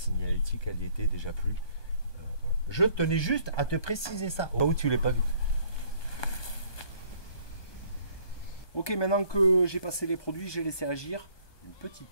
elle y était déjà plus. Voilà. Je tenais juste à te préciser ça, au cas où tu l'as pas vu. Ok, maintenant que j'ai passé les produits, j'ai laissé agir. Une petite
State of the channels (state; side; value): late; right; 1.2 ms